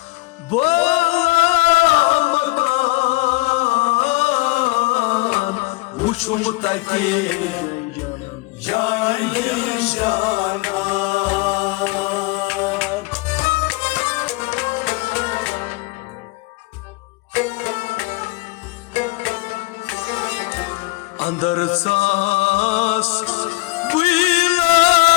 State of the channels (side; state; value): right; quieter; 23.4 dB